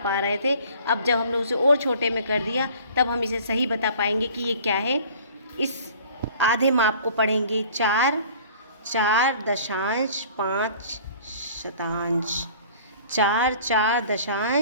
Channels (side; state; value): both; inverted; correlation -0.49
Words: रहे थे। अब जब हमने उसे और छोटे में कर दिया, तब हम इसे सही बता पाएंगे कि ये क्या है। इस आधे माप को पढ़ेंगे 4 दशांश 5 शतांश, 4